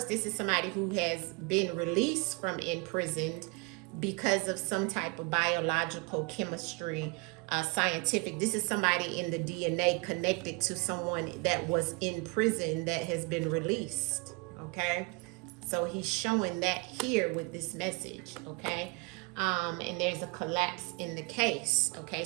this is somebody who has been released from imprisoned because of some type of biological chemistry, scientific. This is somebody in the DNA connected to someone that was in prison that has been released. Okay, so he's showing that here with this message. Okay. And there's a collapse in the case. Okay,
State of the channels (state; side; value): quieter; left; 29.8 dB